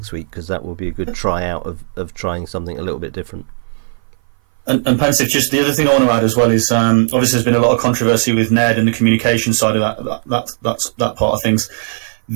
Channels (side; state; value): left; silent; 58 dB below the other